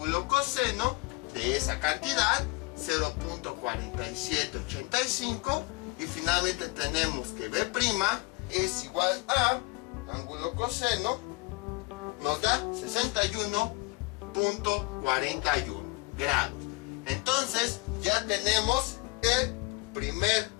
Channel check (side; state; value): right; quieter; 25.3 dB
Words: coseno de esa cantidad, 0.4785. Y finalmente tenemos que B' es igual a ángulo coseno, nos da 61.41 grados. Entonces ya tenemos el primer